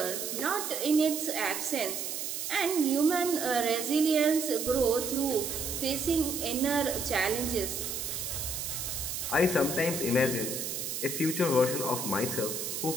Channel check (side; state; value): right; noise; hiss, 4 dB below the sound